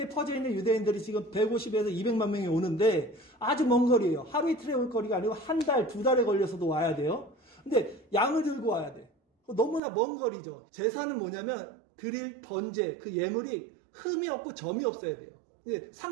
퍼져 있는 유대인들이 지금 150에서 200만 명이 오는데 아주 먼 거리예요. 하루 이틀에 올 거리가 아니고 한 달, 두 달에 걸려서도 와야 돼요. 근데 양을 들고 와야 돼. 너무나 먼 거리죠. 제사는 뭐냐면 드릴 번제, 그 예물이 흠이 없고 점이 없어야 돼요.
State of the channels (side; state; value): left; drops out; at 9.8 s